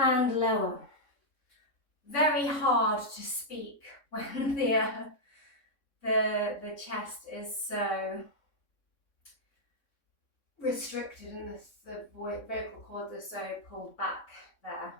lower. Very hard to speak when the chest is so restricted and the vocal cords are so pulled back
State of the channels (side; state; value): right; late; 3.6 ms